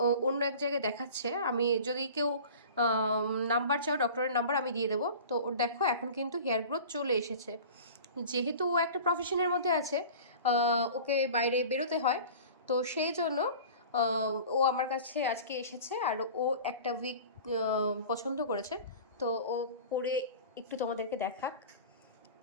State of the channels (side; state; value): both; inverted; correlation -0.39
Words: অন্য এক জায়গায় দেখাচ্ছে। আমি যদি কেউ নাম্বার চাও, ডক্টরের নাম্বার আমি দিয়ে দেবো। তো ওর দেখো এখন কিন্তু হেয়ার গ্রোথ চলে এসেছে। যেহেতু ও একটা প্রফেশনের মধ্যে আছে, ওকে বাইরে বেরোতে হয়, তো সেই জন্য ও আমার কাছে আজকে এসেছে। আর ও একটা উইক পছন্দ করেছে, তো ও পরে একটু তোমাদেরকে দেখাক।